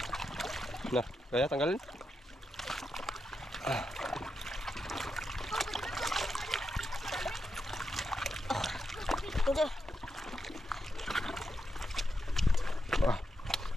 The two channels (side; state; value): both; normal; correlation 0.85